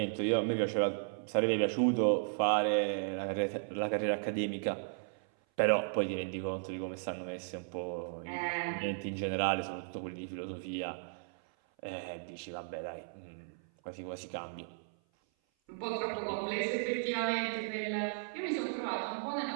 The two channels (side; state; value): left; silent; 54 dB below the other